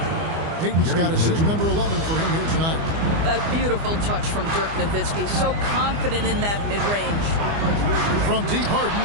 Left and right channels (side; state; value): left; late; 25 ms